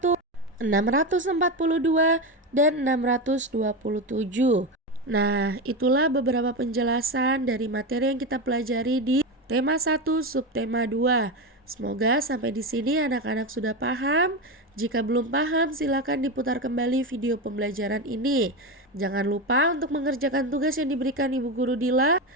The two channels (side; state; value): both; normal; correlation 0.16